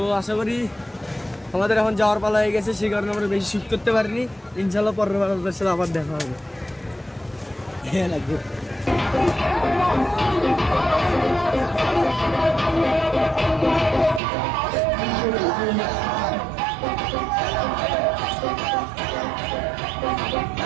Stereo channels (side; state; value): left; drops out; at 14.2 s